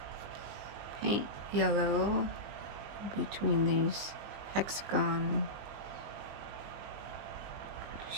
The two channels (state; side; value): late; left; 20 ms